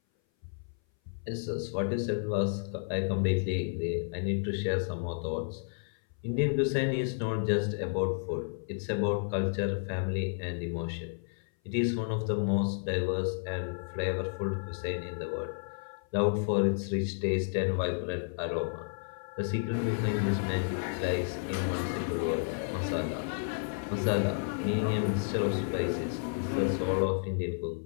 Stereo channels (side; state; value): right; silent; 57 dB below the other